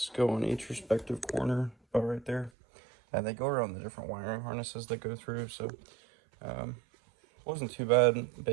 go on each respective corner, about right there, and they go around the different wiring harnesses that go through. So wasn't too bad.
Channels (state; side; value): drops out; left; at 2.5 s